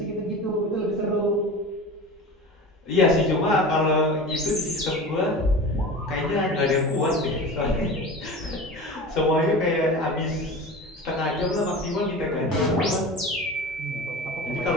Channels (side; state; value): both; normal; correlation 0.33